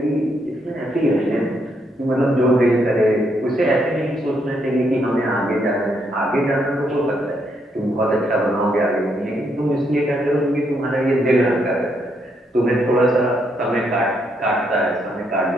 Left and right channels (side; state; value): both; normal; correlation 0.76